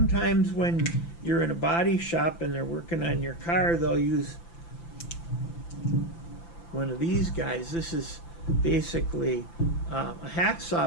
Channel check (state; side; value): late; right; 5.9 ms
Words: when you're in a body shop and they're working on your car, they'll use one of these guys. This is basically a